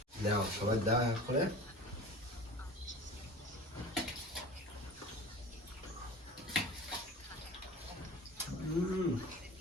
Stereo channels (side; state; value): both; normal; correlation 0.38